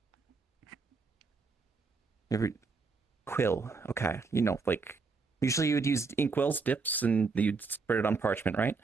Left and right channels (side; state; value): left; quieter; 4.5 dB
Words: Every quill, okay. Like usually you would use inkwells, dips, and you'd spread it on parchment, right?